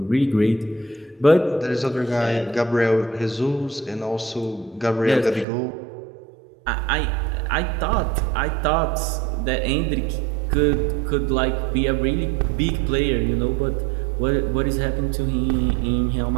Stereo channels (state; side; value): drops out; left; at 5.5 s